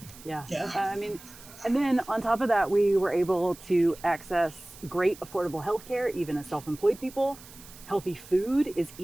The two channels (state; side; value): noise; right; hiss, 19 dB below the sound